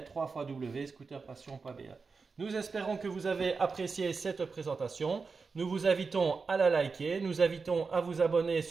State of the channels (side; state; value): left; quieter; 4.7 dB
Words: www.scooterpassion.be. Nous espérons que vous avez apprécié cette présentation. Nous vous invitons à la liker, nous invitons à vous abonner